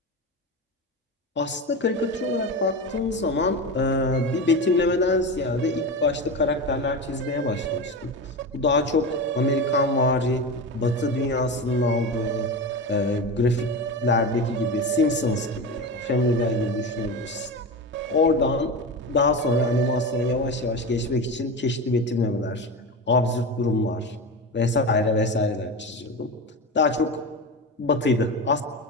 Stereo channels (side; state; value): both; normal; correlation 0.23